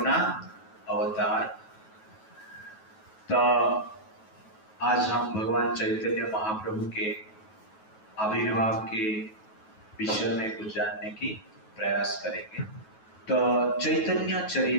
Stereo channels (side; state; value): right; late; 9.3 ms